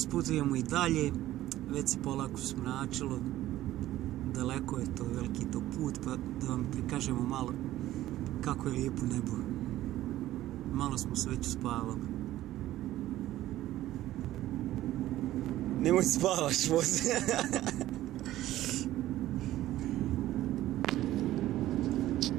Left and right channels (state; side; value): quieter; left; 14.6 dB